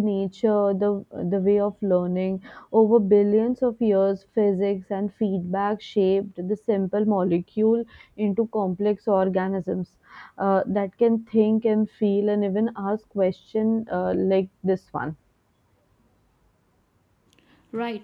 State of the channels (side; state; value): both; identical; correlation 1.00